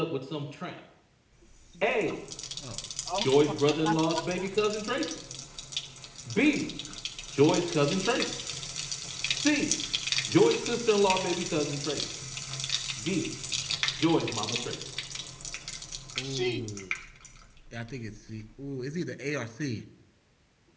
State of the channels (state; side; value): identical; both; correlation 1.00